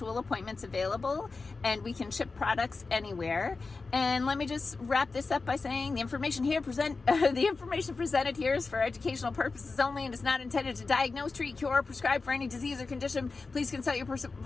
appointments available, and we can ship products anywhere. And let me just wrap this up by saying the information presented here is for educational purposes only and is not intended to diagnose, treat, cure, or prescribe for any disease or condition. Please consult your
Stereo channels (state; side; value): quieter; right; 4.1 dB